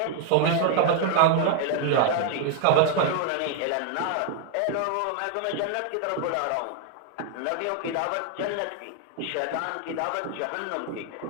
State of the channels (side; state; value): both; different; correlation 0.00